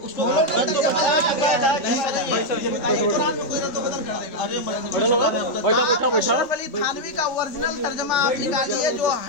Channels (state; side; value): late; right; 3.4 ms